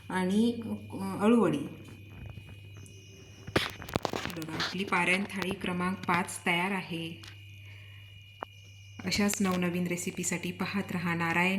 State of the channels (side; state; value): both; identical; correlation 1.00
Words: आणि अळूवडी. बघा, आपली पारायण थाळी क्रमांक 5 तयार आहे. अशाच नवनवीन रेसिपीसाठी पाहत रहा